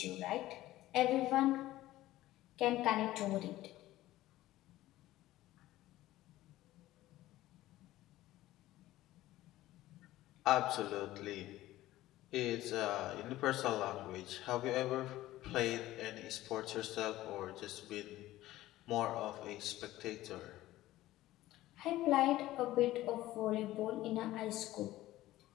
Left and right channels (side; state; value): right; quieter; 15.9 dB